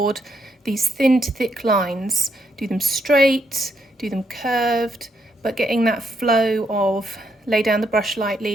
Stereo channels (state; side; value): normal; both; correlation 0.76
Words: these thin to thick lines. Do them straight, do them curved, but getting that flow of lay down the brush